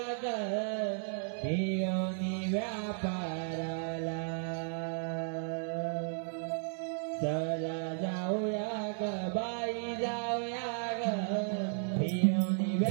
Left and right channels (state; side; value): silent; left; 55 dB below the other